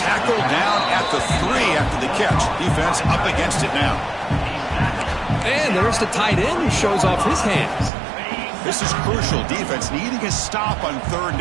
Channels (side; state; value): left; drops out; at 7.9 s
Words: down at the 3 after the catch. Defense up against it now. And there's the tight end who shows off his hands. This is crucial. Defense needing a stop on 3rd